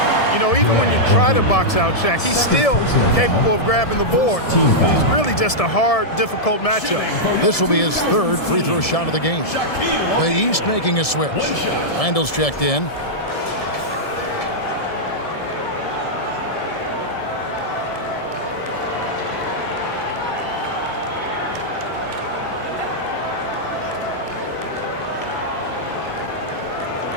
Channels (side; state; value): right; late; 1.7 ms